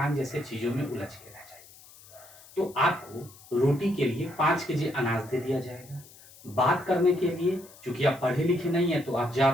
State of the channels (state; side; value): noise; left; hiss, 22 dB below the sound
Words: जैसे चीजों में उलझ के रह जाइए। तो आपको रोटी के लिए 5 केजी अनाज दे दिया जाएगा, बात करने के लिए चूंकि आप पढ़े लिखे नहीं है तो आप